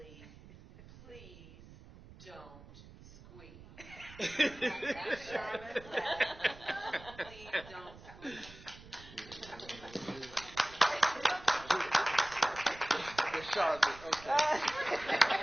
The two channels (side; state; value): right; noise; rumble, 19 dB below the sound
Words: Please Don't Squeeze. Sharmin, please don't squeeze. Sharmin, okay.